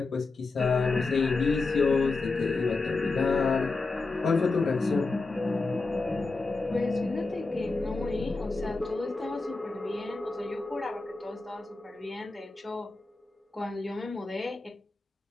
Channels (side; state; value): right; quieter; 3.6 dB